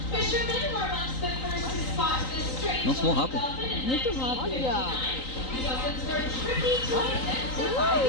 Nossa, muito rápido. Muito rápido.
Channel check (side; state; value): right; late; 3.9 ms